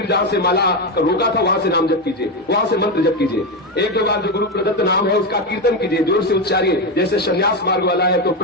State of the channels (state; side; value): normal; both; correlation 0.12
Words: जहां से माला रोका था वहां से नाम जप कीजिए, वहां से मंत्र जप कीजिए। 1-2 बार जो गुरु प्रदत्त नाम है उसका कीर्तन कीजिए, जोर से उच्चारिए। जैसे संन्यास मार्ग वाला है तो